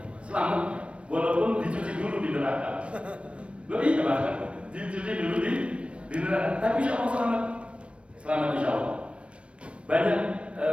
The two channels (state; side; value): late; left; 0.060 ms